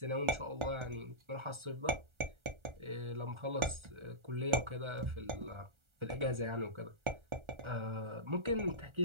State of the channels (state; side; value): late; left; 1.4 ms